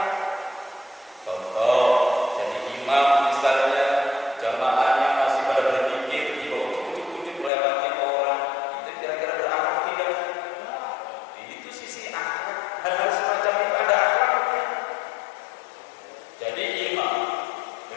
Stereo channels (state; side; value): drops out; right; at 7.5 s